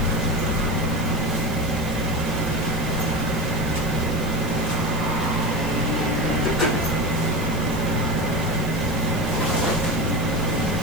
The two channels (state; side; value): noise; right; hiss, 16 dB below the sound